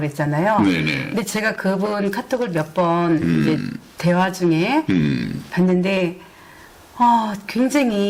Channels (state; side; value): identical; both; correlation 1.00